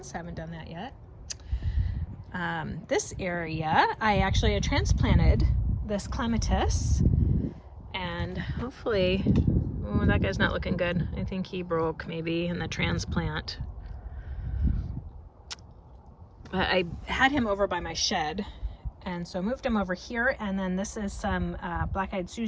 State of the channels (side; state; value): both; identical; correlation 1.00